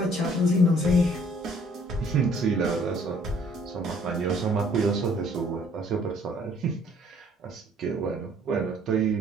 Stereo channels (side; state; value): both; normal; correlation 0.59